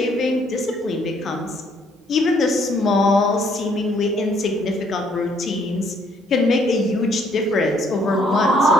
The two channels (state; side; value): normal; both; correlation 0.66